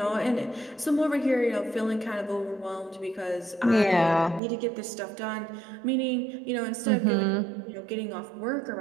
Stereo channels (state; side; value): drops out; left; at 4.4 s